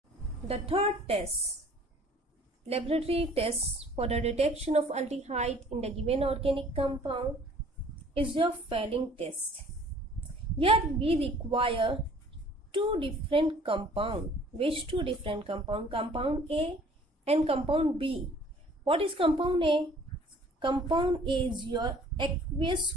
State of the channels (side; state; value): both; normal; correlation 0.53